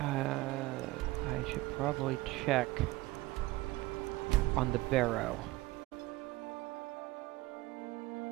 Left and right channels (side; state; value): left; quieter; 19.1 dB